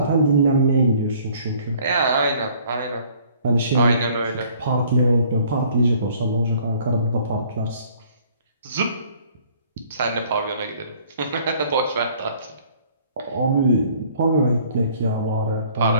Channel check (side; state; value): both; inverted; correlation -0.58